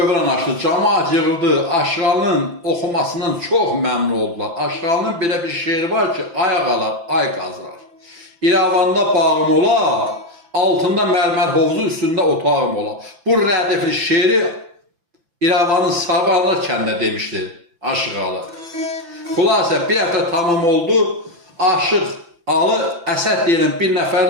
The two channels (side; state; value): left; late; 5.9 ms